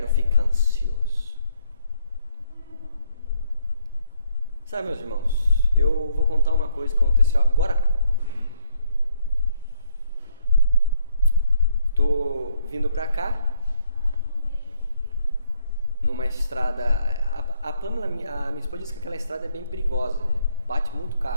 ficar ansioso. Sabe, meus irmãos, eu vou contar uma coisa que aconteceu agora há pouco. Estou vindo para cá, numa estrada, a Pamela, a minha esposa disse que aquela estrada é bem perigosa, bate muito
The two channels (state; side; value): inverted; both; correlation -0.69